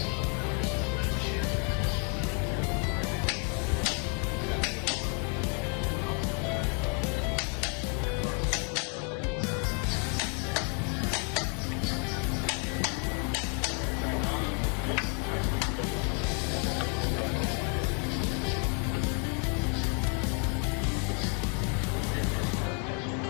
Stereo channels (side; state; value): right; quieter; 39.1 dB